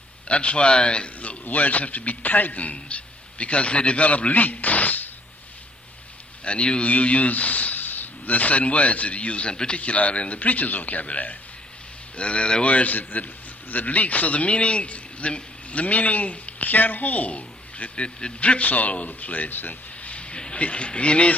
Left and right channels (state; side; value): normal; both; correlation 0.63